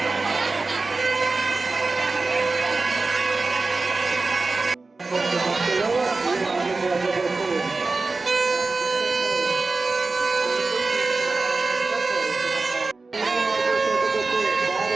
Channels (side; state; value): left; quieter; 3.7 dB